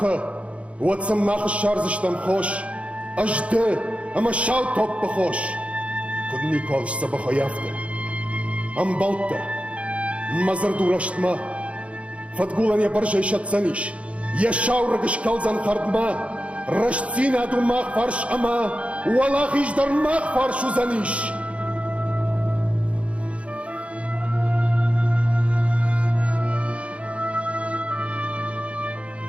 Уатсам махы шарзыштам хош, Ажды, ама шау топпа хош. Кудни колыш сабаха яфта. Амбалта, мазар дураштма, Фатгулан я баржай шатсаниш, Я шау рагыш калзан хардма, Рашцина адумах фарш ама, Уалах иждармах фарш узаниш.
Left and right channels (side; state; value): left; late; 0.062 ms